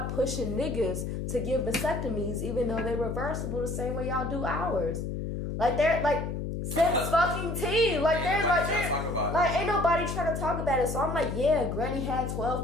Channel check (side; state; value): left; noise; hum, 4 dB below the sound